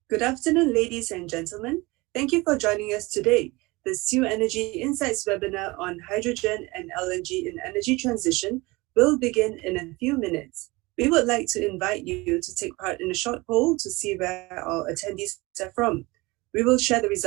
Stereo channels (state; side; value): quieter; left; 23.1 dB